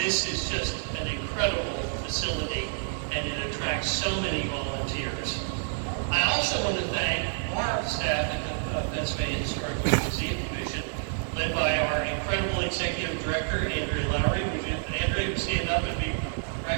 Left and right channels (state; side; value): silent; left; digital silence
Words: is just an incredible facility, and it attracts so many volunteers. I also want to thank our staff at the Pennsylvania Historical Museum Commission, led by our incredible Executive Director, Andrea Lowry. Would you, Andrea, stand up and be